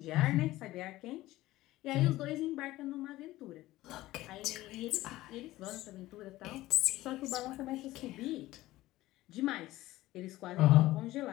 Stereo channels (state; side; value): quieter; right; 16.9 dB